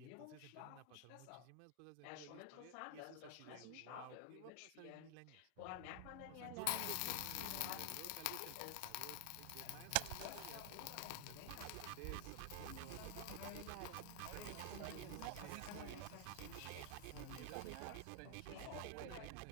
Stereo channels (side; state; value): both; different; correlation 0.00